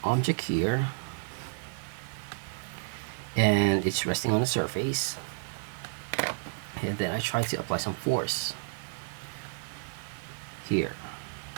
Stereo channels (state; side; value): silent; left; digital silence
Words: object here and it's resting on the surface, and then I try to apply some force here,